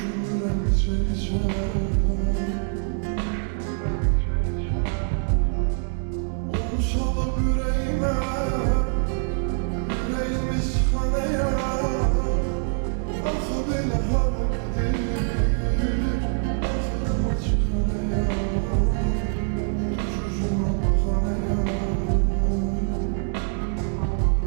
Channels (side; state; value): left; silent; 56 dB below the other